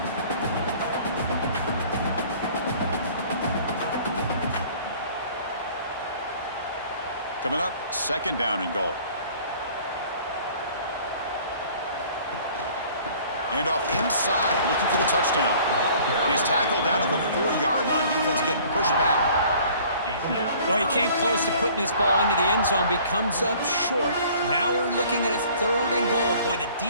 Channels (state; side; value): inverted; both; correlation -0.52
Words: Coming up, 2nd down and goal. Handoff inside, looking for the touchdown. And he's tackled down at the 4-yard line. Defense getting pushed back. Well, he came close to putting this ball into the end zone, but he comes up short. Now we're looking at a 3rd and goal. Boy, the